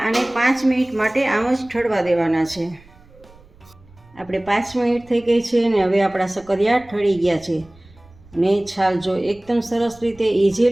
આને 5 મિનિટ માટે આમ જ ઠરવા દેવાના છે. આપણે 5 મિનિટ થઈ ગઈ છે અને હવે આપણા શક્કરિયા ઠરી ગયા છે. ને છાલ જો એકદમ સરસ રીતે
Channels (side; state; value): right; noise; rumble, 26 dB below the sound